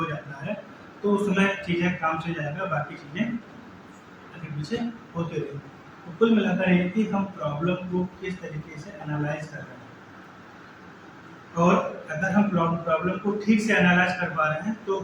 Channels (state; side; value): identical; both; correlation 1.00